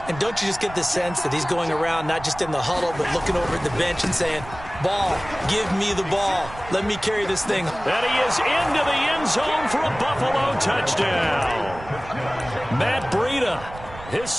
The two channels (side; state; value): right; noise; rumble, 15 dB below the sound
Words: And don't you just get the sense that he's going around not just in the huddle, but looking over at the bench and saying, ball, give me the ball. Let me carry this thing. And he is into the end zone for a Buffalo touchdown. Matt Breida, his